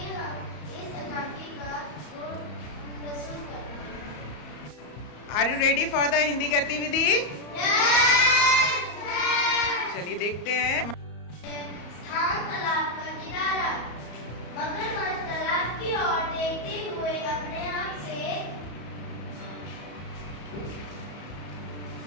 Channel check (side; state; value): right; late; 34 ms